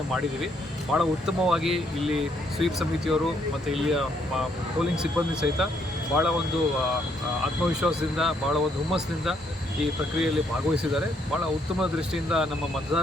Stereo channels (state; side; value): normal; both; correlation 0.72